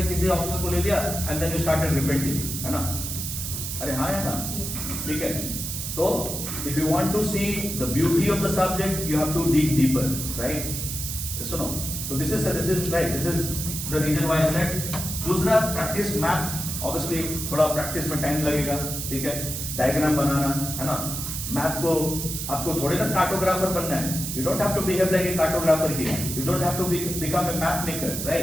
किसी ऑप्शन को ले लिया and then you started repenting, है ना, अरे हाँ है ना, ठीक है। तो if you want to see the beauty of the subject you have to dig deeper, right, सुनो। तो this is right, this is the reason why I said. दूसरा प्रैक्टिस मैप, ऑब्वियसली थोड़ा प्रैक्टिस में टाइम लगेगा, ठीक है, diagram बनाना, है ना। मैप को आपको थोड़े ना कार्टोग्राफर बनना है, you don't have to behave like a cartographer here, you don't have to become a map maker,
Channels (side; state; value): right; noise; hiss, 5 dB below the sound